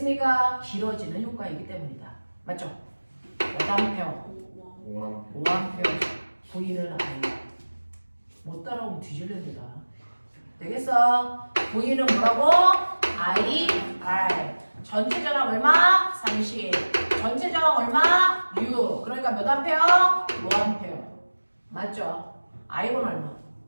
길어지는 효과이기 때문이다. 맞죠? 몇 암페어? 5암페어. V는 아니야. 못 따라오면 뒤질랜다. 되겠어? V는 뭐라고? IR. 전체 저항 얼마? 30. 전체 저항 얼마? 6. 그러니까 몇 암페어? 5암페어. 맞죠? I1 얼마?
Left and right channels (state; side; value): inverted; both; correlation -1.00